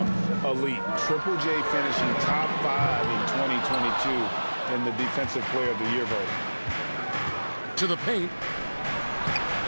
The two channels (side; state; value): both; inverted; correlation -1.00